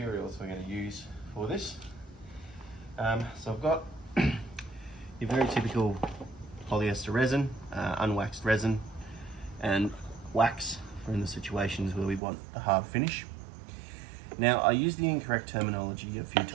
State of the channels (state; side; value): drops out; left; at 12.2 s